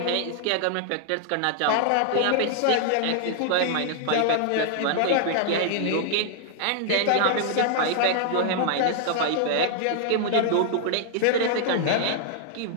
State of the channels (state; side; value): different; both; correlation -0.01